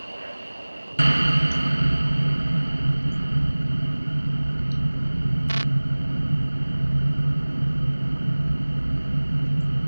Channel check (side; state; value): both; inverted; correlation -1.00